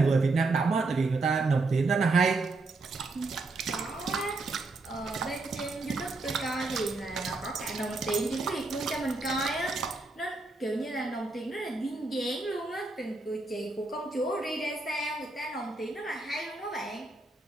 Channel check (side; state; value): left; quieter; 3.4 dB